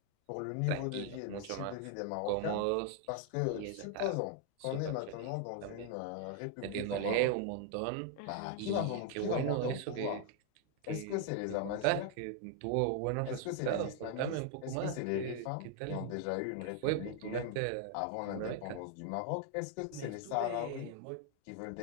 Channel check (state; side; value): different; both; correlation 0.00